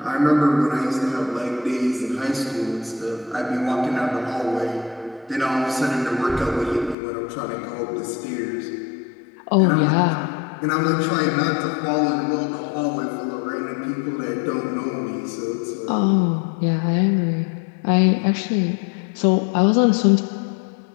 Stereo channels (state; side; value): drops out; right; at 7.0 s